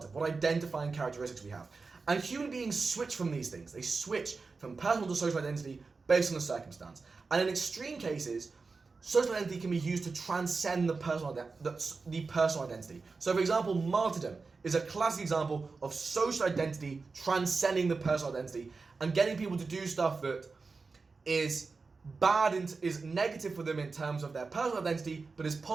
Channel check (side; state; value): left; quieter; 4.3 dB